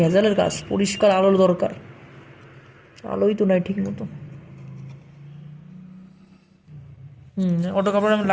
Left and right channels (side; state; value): both; identical; correlation 1.00